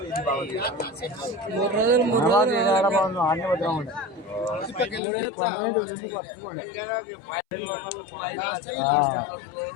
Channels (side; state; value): right; drops out; at 5.0 s